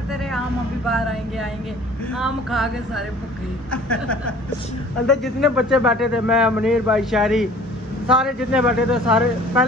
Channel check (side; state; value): both; normal; correlation 0.49